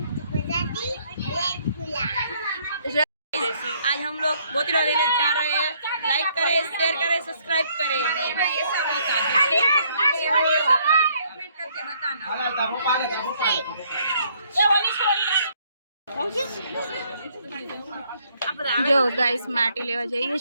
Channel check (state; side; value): inverted; both; correlation -0.67